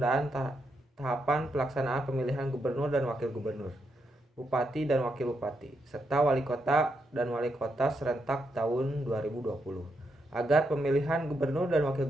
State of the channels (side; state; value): both; normal; correlation 0.81